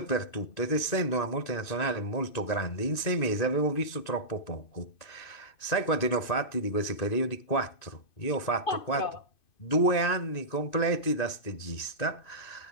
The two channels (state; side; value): late; right; 2.5 ms